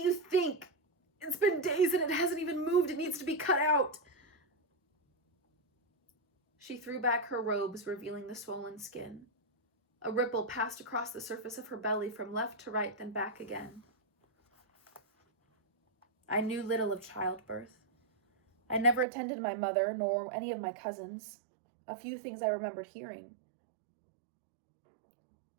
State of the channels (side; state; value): left; drops out; at 19.1 s